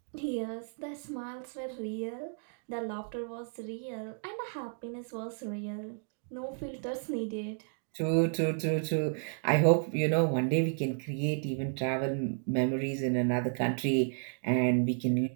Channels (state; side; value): silent; left; 56 dB below the other